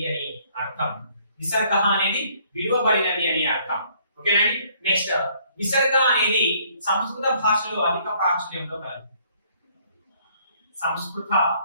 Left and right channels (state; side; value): inverted; both; correlation -0.63